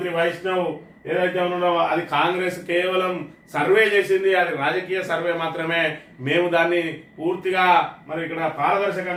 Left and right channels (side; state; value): both; identical; correlation 1.00